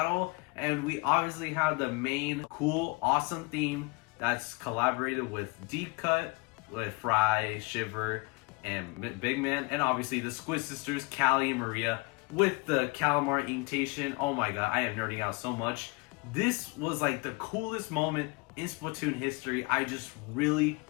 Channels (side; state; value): right; quieter; 27.6 dB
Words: And we obviously have the main cool, awesome theme that's collaborated with Deep Cut, with Fry, Shiver, and Big Man, and obviously the Squid Sisters, Callie and Maria, with the Calamar invitation. Oh my god, I am nerding out so much. This was like the coolest moment in Splatoon history. I just really